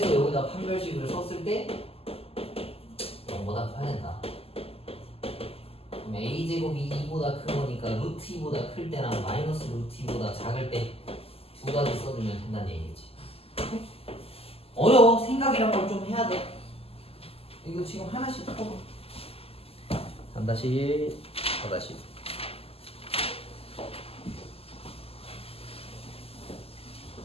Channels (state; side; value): late; right; 0.29 ms